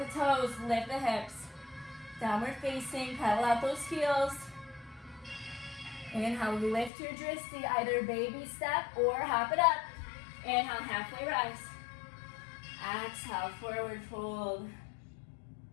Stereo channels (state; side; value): drops out; right; at 6.9 s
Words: toes, lift the hips. Downward facing, pedal out those heels. Inhale, lift your dristi, either baby step or hop it up. Inhale, halfway rise. Exhale, forward fold.